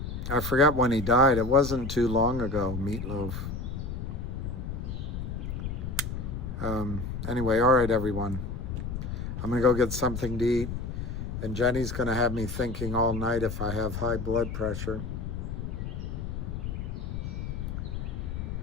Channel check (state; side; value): noise; left; rumble, 5 dB below the sound